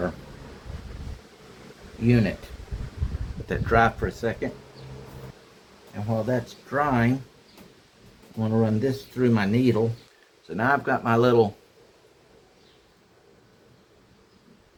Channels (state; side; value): identical; both; correlation 1.00